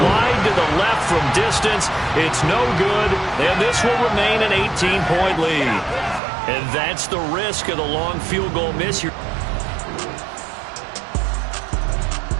Wide to the left from distance. It's no good. And this will remain an 18-point lead. And that's the risk of the long field goal miss.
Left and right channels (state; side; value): drops out; left; at 6.2 s